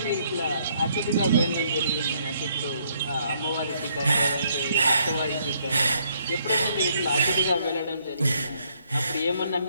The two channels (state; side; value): inverted; both; correlation -0.69